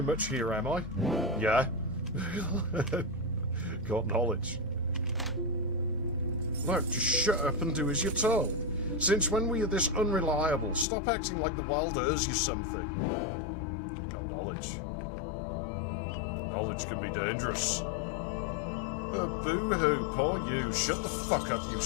much here, am I? Yeah. Got knowledge. Look, just shut up and do as you're told. Since when were you this unreliable? Stop acting like the wild earth's you something. Got knowledge. Knowledge can be dangerous. Oh, boo-hoo, poor you. Shut the fuck up, you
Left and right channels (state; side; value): drops out; right; at 10.9 s